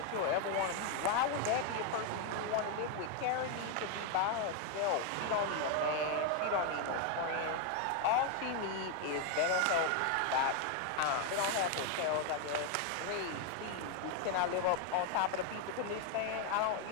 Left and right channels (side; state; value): both; different; correlation 0.01